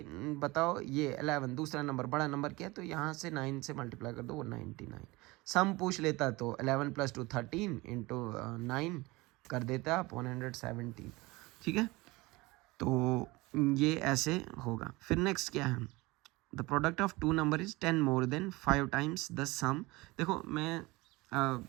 बताओ ये 11 दूसरा नंबर बड़ा नंबर क्या है, तो यहाँ से 9 से मल्टीप्लाई कर दो, वो 99। सम पूछ लेता तो 11 + 2 13 × 9 कर देता आप 117, ठीक है। तो ये ऐसे होगा। फिर नेक्स्ट क्या है, the product of two number is 10 more than 5 times the sum. देखो मैं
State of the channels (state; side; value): quieter; left; 22.3 dB